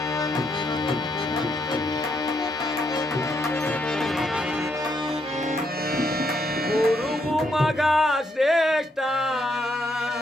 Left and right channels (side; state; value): both; normal; correlation 0.76